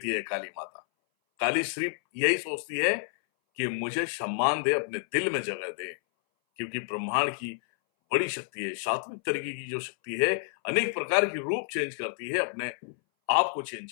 है काली माता। काली सिर्फ यही सोचती है कि मुझे सम्मान दे, अपने दिल में जगह दे, क्योंकि ब्रह्मांड की बड़ी शक्ति है। सात्विक तरीके की जो शक्ति है अनेक प्रकार की रूप चेंज करती है, अपने आप को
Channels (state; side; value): silent; right; 58 dB below the other